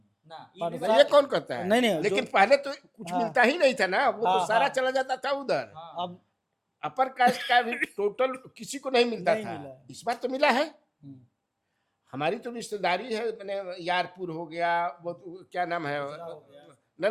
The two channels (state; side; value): identical; both; correlation 1.00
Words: ना पर ये तो ये कौन कहता है? नहीं, नहीं, लेकिन जो- पहले तो कुछ हाँ। मिलता ही नहीं था ना, वो हाँ, तो सारा हाँ। चला जाता था उधर। हाँ, अब अपर कास्ट का भी टोटल किसी को नहीं मिलता नहीं था, मिला है। इस बार तो मिला है। हम्म, हमारी तो रिश्तेदारी है, मैंने यारपुर हो गया, वो तो क्या नाम है, ना